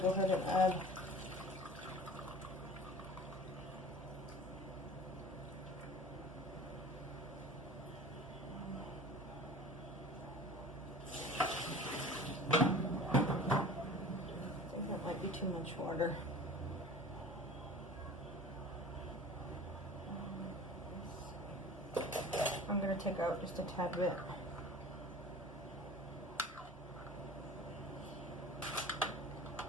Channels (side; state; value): both; normal; correlation 0.41